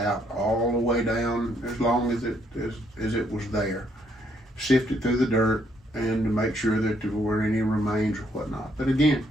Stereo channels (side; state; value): both; normal; correlation 0.71